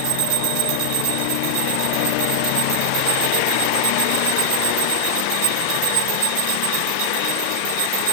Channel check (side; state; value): both; different; correlation 0.00